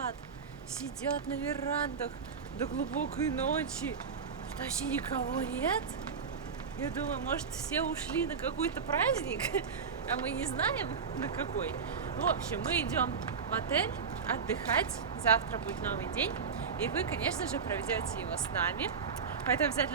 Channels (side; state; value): left; quieter; 6.0 dB